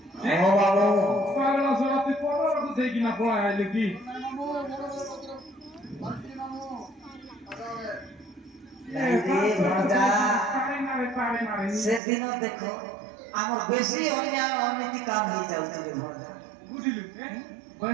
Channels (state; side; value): drops out; left; at 12.0 s